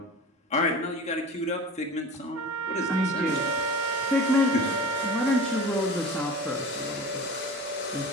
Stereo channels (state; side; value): normal; both; correlation 0.35